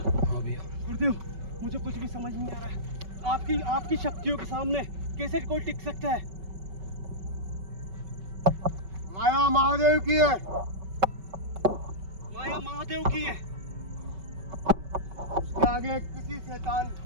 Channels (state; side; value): late; left; 5.3 ms